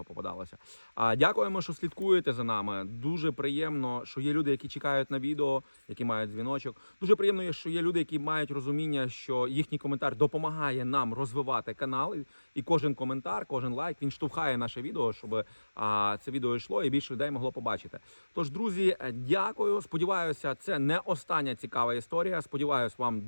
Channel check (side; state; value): both; inverted; correlation -1.00